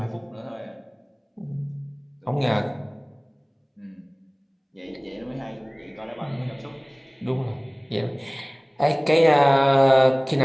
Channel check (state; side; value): identical; both; correlation 1.00